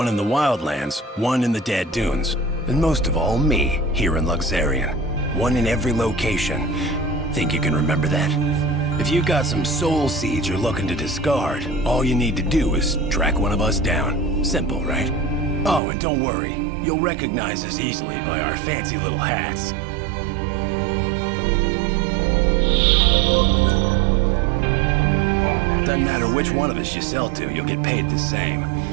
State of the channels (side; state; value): left; drops out; at 15.8 s